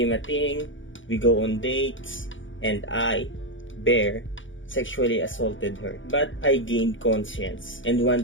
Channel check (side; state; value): right; late; 0.56 ms